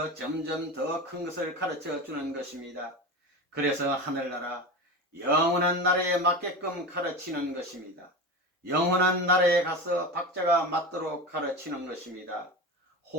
점점 더 큰 것을 가르쳐 주는 것입니다. 그래서 하늘나라, 영원한 나라에 맞게끔 가르치는 것입니다. 영원한 나라에 가서 박자가 맞도록 가르치는 것입니다.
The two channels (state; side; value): normal; both; correlation 0.26